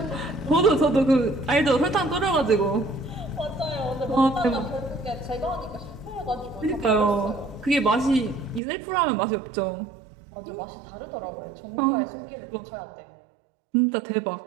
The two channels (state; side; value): drops out; left; at 8.6 s